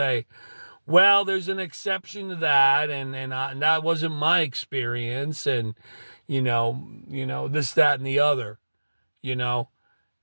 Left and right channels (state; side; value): inverted; both; correlation -1.00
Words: well, there's an exception to that, and that wasn't my experience, and this, that, and the other,